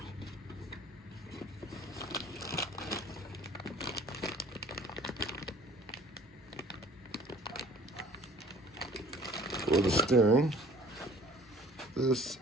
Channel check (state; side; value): normal; both; correlation 0.51